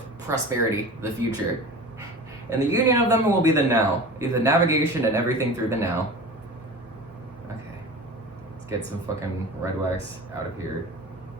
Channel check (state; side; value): normal; both; correlation 0.35